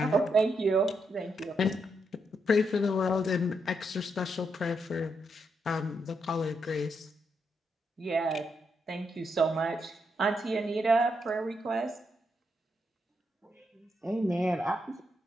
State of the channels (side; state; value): both; normal; correlation 0.80